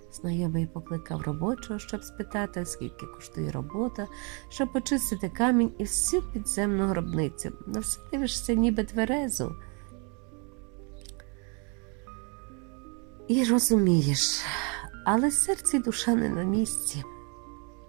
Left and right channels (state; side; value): quieter; left; 34.9 dB